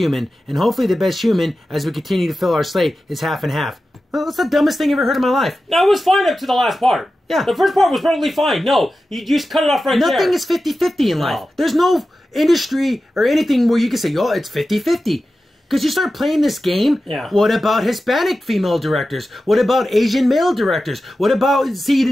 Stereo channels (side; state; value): both; normal; correlation 0.93